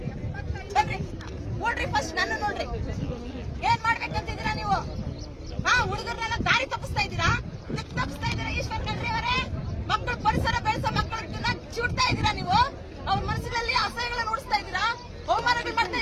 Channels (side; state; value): both; identical; correlation 1.00